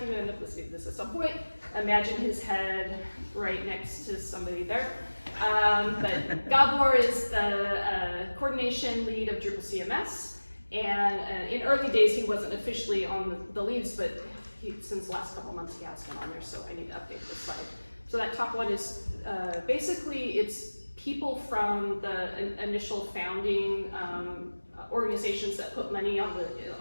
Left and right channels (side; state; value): both; inverted; correlation -1.00